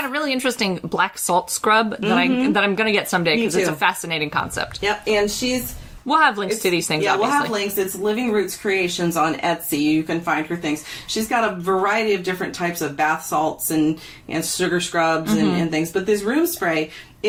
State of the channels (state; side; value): identical; both; correlation 1.00